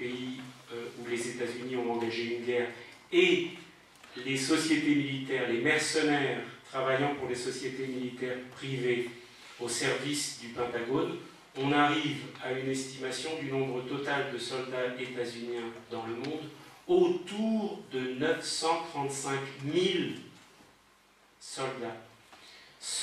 où les États-Unis ont engagé une guerre et les sociétés militaires, les mercenaires travaillant pour les sociétés militaires privées au service du Pentagone, on arrive à une estimation du nombre total de soldats états-uniens dans le monde autour de 935 000 soldats,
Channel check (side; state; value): both; identical; correlation 1.00